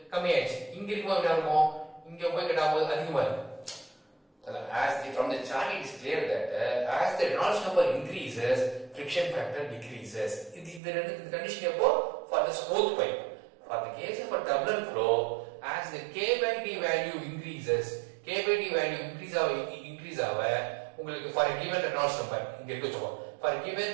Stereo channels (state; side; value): drops out; left; at 10.8 s